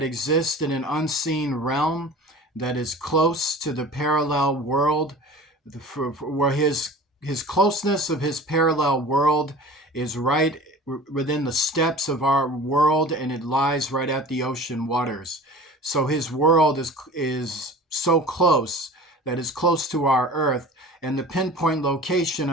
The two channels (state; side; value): normal; both; correlation 0.40